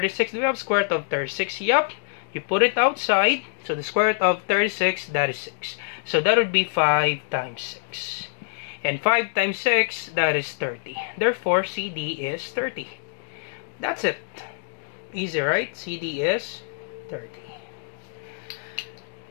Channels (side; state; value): right; silent; digital silence